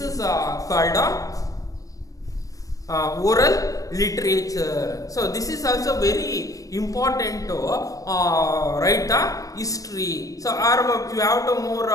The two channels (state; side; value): late; right; 0.16 ms